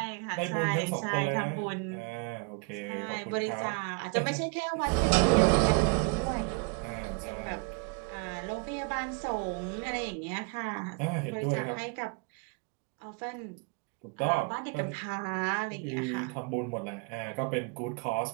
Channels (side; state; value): left; quieter; 34.1 dB